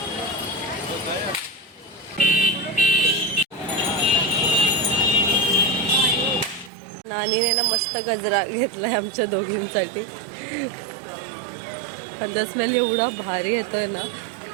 नानीने ना मस्त गजरा घेतलाय आमच्या दोघींसाठी. आणि स्मेल एवढा भारी येतोय ना.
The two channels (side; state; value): left; drops out; at 6.7 s